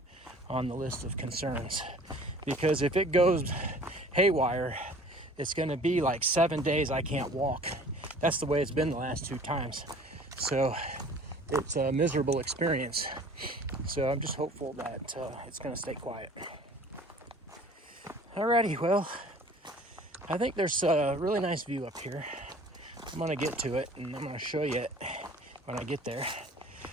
on the list of concerns. Because if it goes haywire, it's going to be like 7 days I can't walk. That's the way it's been the last 2 times. So it's a miserable experience. So I'm just hopeful that it's going to stay quiet. Alrighty, well, I think there's a really nice view up here. I'm going to get to it, and I'm going to show you it when I get there.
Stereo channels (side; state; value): both; normal; correlation 0.49